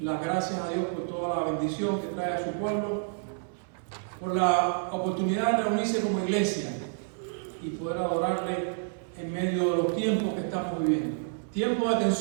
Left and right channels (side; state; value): left; silent; 57 dB below the other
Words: gracias a Dios por toda la bendición que trae a su pueblo, por la oportunidad de reunirse como iglesia y poder adorarle en medio de los tiempos que estamos viviendo. Tiempos de